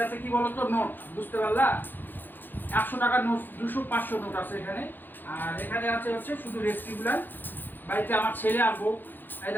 কি বলতো, নোট, বুঝতে পারলা? 100 টাকার নোট, 200 500 নোট আছে এখানে। আর এখানে আছে হচ্ছে শুধু রেসিপিগুলো। বাড়িতে আমার ছেলে আর বউ, এই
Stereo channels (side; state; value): right; late; 0.091 ms